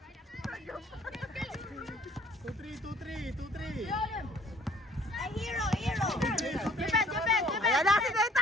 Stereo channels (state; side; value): normal; both; correlation 0.57